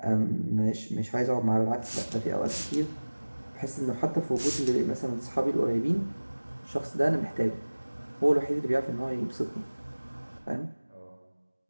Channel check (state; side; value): inverted; both; correlation -1.00